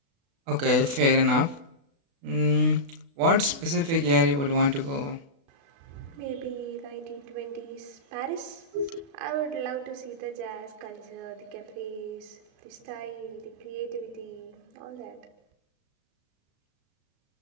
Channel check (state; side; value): late; left; 36 ms